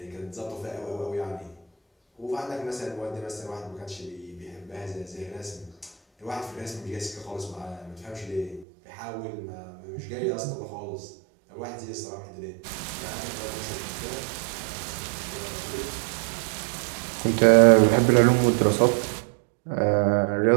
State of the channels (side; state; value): left; drops out; at 8.7 s